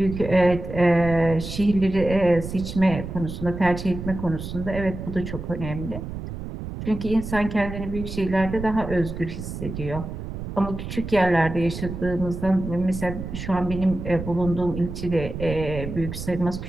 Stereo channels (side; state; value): right; noise; rumble, 8 dB below the sound